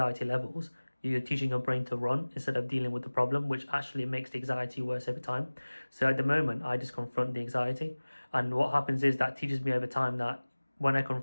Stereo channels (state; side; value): inverted; both; correlation -1.00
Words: levels, you're teaching your brain to run instead of dealing with the problem, which actually makes the anxiety worse every time. So at the moment, I just confront the anxiety. And what happens is that teaches me over time that when I